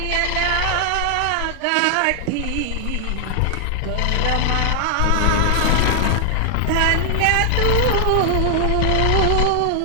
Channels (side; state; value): both; different; correlation 0.00